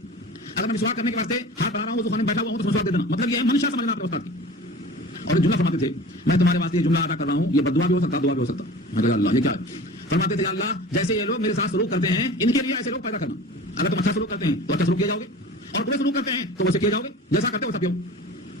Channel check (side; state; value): both; normal; correlation 0.39